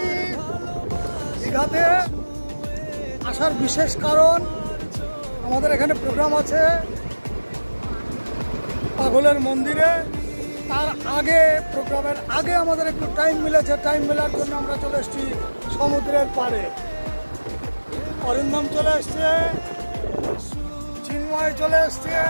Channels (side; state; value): both; inverted; correlation -1.00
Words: দীঘাতে আসার বিশেষ কারণ আমাদের এখানে প্রোগ্রাম আছে পাগলের মন্দিরে। তার আগে প্রোগ্রামের আগে আমাদের একটু টাইম মিলেছে, টাইম মেলার জন্য আমরা চলে এসেছি সমুদ্রের পাড়ে। অরিন্দম চলে এসছে, চিন্ময় চলে এসছে,